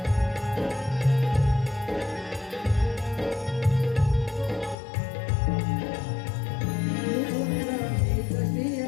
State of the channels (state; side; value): drops out; right; at 4.8 s